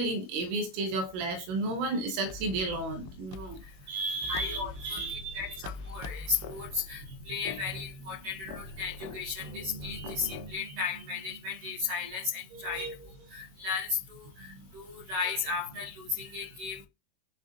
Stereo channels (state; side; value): late; left; 21 ms